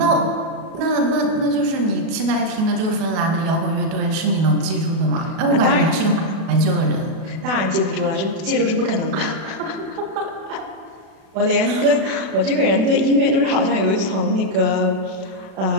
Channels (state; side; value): late; left; 37 ms